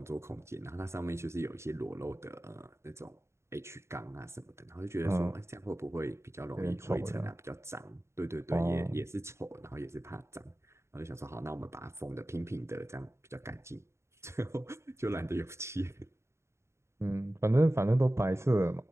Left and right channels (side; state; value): left; late; 0.13 ms